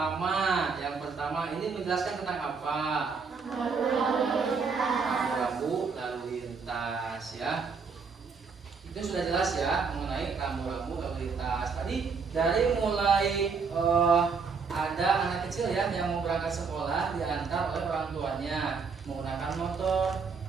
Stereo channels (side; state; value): left; quieter; 5.2 dB